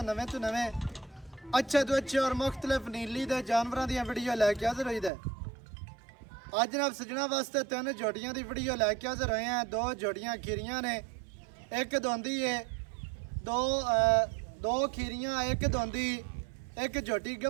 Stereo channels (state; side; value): drops out; left; at 5.1 s